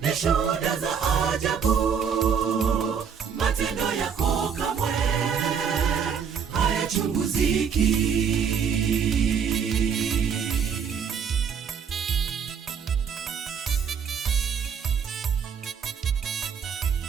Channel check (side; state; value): left; quieter; 7.0 dB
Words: ni shuhuda za ajabu, matendo yako kamwe hayachunguziki.